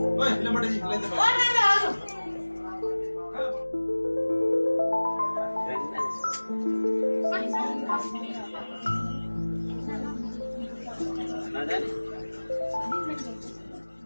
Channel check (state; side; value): inverted; both; correlation -1.00